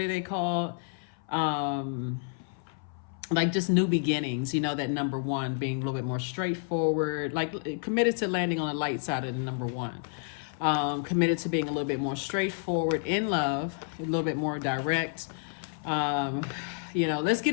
they call? Like just new beginnings, that number one being a little bit more straightforward, like committed to landing on the light side of the number one. Committed to being a little bit more straightforward in love, a little bit more direct. Let's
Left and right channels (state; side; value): silent; right; 56 dB below the other